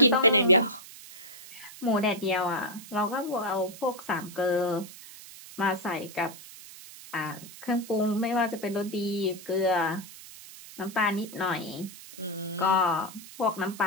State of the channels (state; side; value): noise; right; hiss, 16 dB below the sound